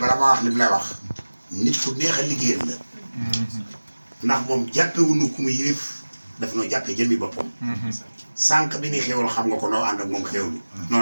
ma wax li mu lay wax nit ku neex a liggéeyal la ndax moom jàppewuñu ku mu yilif daf noo jàppee jëmmi boppam sànq bi ni xéwal xam nga ko noo ànd ak moom xéwlu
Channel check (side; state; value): both; inverted; correlation -1.00